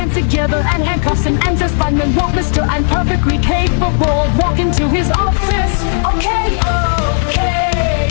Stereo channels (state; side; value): silent; right; digital silence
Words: together and handcuffs him and says, fine and walk, mister. I'm perfectly capable of walking to his office. Okay,